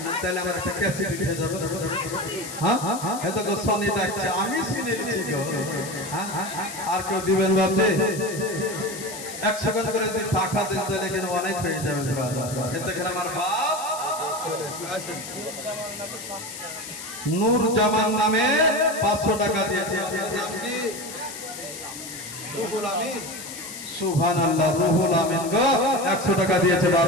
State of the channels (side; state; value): left; noise; hiss, 11 dB below the sound